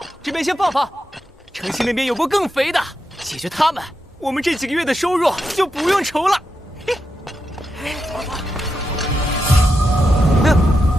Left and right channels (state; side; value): normal; both; correlation 0.86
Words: 这边先放放。城西那边有波更肥的，解决他们，我们这几个月的收入就不用愁了。